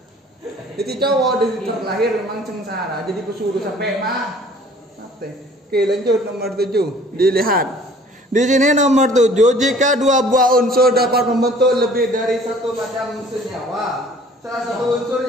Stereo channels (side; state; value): both; normal; correlation 0.52